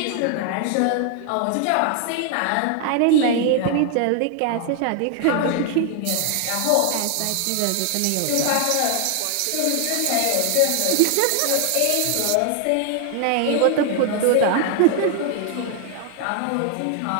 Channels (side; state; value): both; different; correlation 0.00